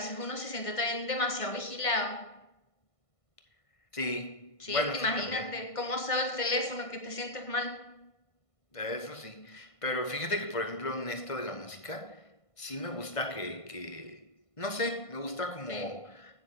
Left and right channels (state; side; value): late; right; 1.5 ms